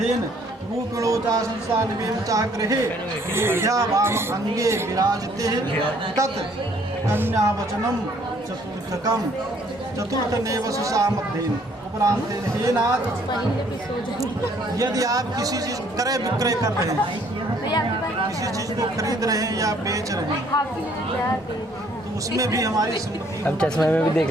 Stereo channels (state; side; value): normal; both; correlation 0.62